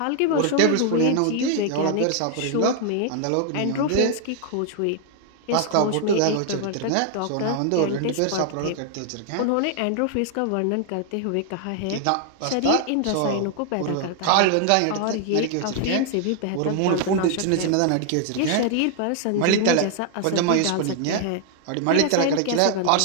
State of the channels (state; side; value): different; both; correlation 0.00